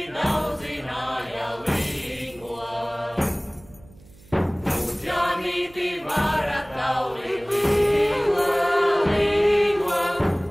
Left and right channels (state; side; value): noise; right; hum, 24 dB below the sound